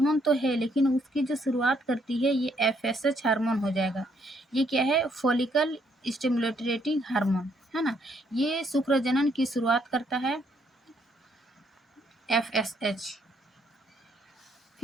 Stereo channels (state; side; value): normal; both; correlation 0.71